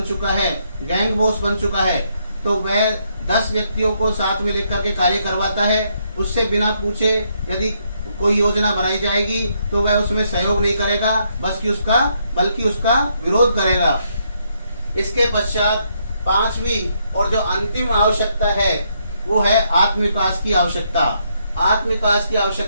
चुका है, गैंग बॉस बन चुका है, तो वह 10 व्यक्तियों को साथ में लेकर के कार्य करवाता है। उससे बिना पूछे यदि कोई योजना बनाई जाएगी तो वह उसमें सहयोग नहीं करेगा, बल्कि उसका विरोध करेगा। इसके पश्चात पांचवी और जो अंतिम आवश्यकता है वो है आत्मविकास की आवश्यकता। आत्मविकास की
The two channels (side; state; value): both; inverted; correlation -0.75